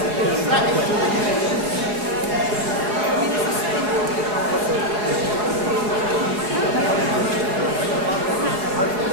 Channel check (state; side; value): late; left; 4.7 ms